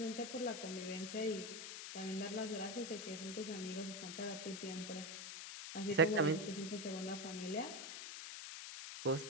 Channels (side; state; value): left; noise; hiss, 7 dB below the sound